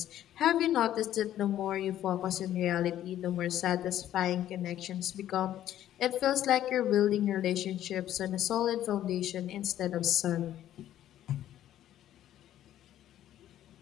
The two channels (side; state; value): right; quieter; 12.1 dB